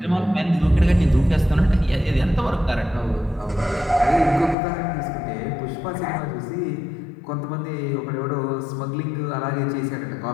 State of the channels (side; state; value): right; drops out; at 4.5 s